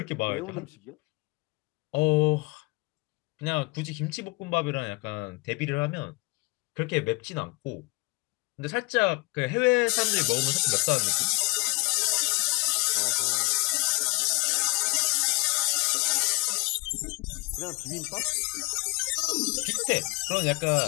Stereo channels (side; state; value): right; quieter; 28.7 dB